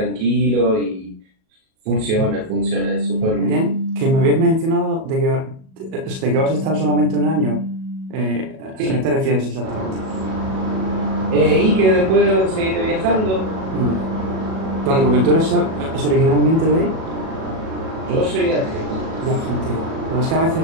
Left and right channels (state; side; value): late; left; 37 ms